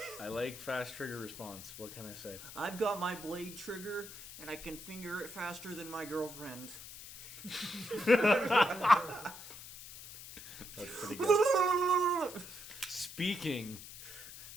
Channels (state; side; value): noise; left; hiss, 14 dB below the sound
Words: I like fast trigger response. What can I say? I've got my blade trigger and I can finger it faster than my girlfriend. That's pretty good.